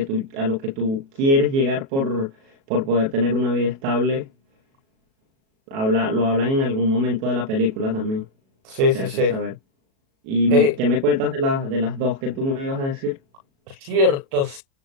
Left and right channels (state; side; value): late; left; 37 ms